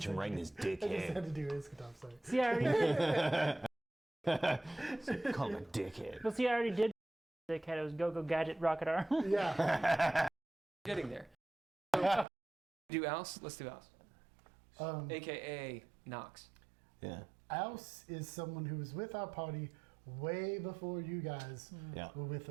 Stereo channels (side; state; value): left; drops out; at 12.2 s